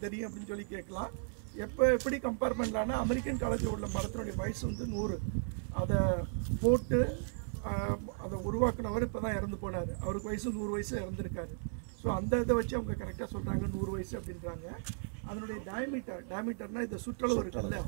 தெரியும் அப்படின்னு சொல்லி கேட்கலாம். எப்படி கம்பேர் பண்ணலான்னா அமெரிக்கன் காலேஜில் உள்ள மரத்தினுடைய வயசு வந்து 100. அதை போட்டு அதை உருவாக்குனவர் இப்போ தான் இறந்து போனார். அவருக்கு வயசு 100 வயசு இறந்துருக்காரு. ஸோ அந்த இதை வச்சு அவங்க கரெக்டாக சொல்கிறாங்க 100 வயசு அப்படின்றாங்க. அதனுடைய டயமீட்டர்னால் இந்த சுற்றளவு இருக்குல்ல,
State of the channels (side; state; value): left; silent; 54 dB below the other